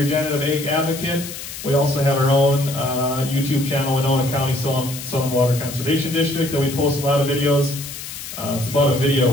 Ag Advocate. We also have our own YouTube channel, Winona County Soil and Water Conservation District, that we post a lot of videos. It's about a video a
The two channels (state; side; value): noise; left; hiss, 10 dB below the sound